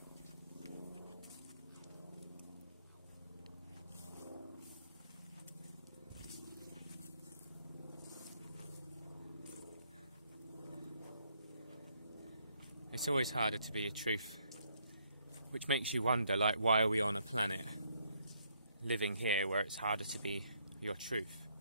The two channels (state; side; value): inverted; both; correlation -0.70